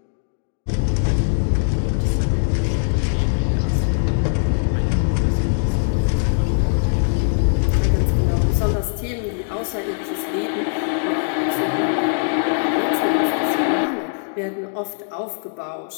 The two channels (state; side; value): silent; right; digital silence